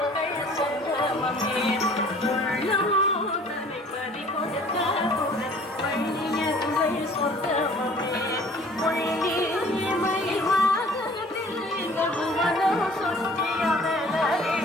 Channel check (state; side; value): normal; both; correlation 0.51